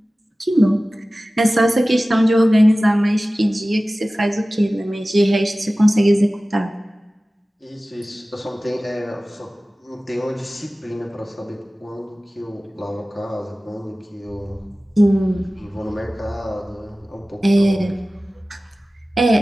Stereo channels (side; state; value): both; normal; correlation 0.97